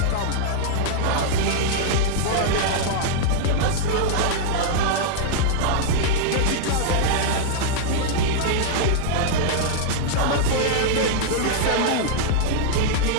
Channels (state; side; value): different; both; correlation -0.01